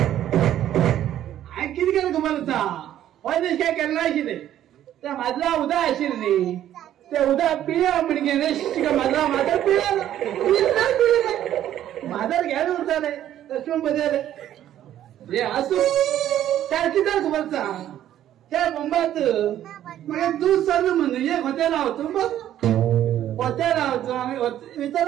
किती केलं तुम्हाला होय दिस काय केलं आशिल्ले त्या माझा उदा आशिल्ली ते उदा पिया म्हणजे माझा माधर पिया माधर घ्यायला उरताले तशून बदले हे असू त्या किती खबर त्या बोंबात म्हणजे दूध सर म्हणून एक हॉटेल होतो बघ हॉटेल होतो आम्ही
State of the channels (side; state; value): left; quieter; 11.8 dB